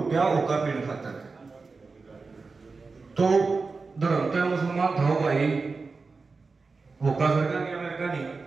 गया ओका पीने खातर। तो धर्मते मुसलमान था भाई, ओका सरकार की अमेरिका नहीं,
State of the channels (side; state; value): left; quieter; 4.2 dB